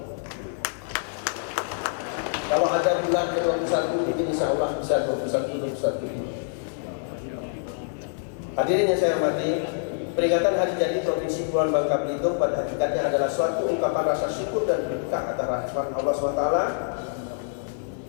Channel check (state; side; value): silent; right; digital silence